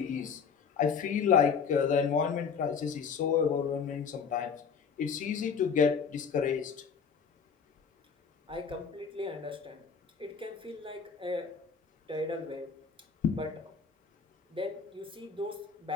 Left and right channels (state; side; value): quieter; right; 6.2 dB